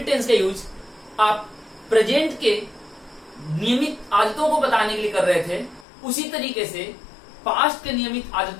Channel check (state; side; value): drops out; right; at 5.9 s